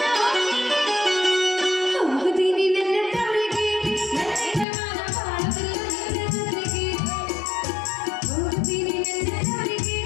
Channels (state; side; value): drops out; right; at 4.7 s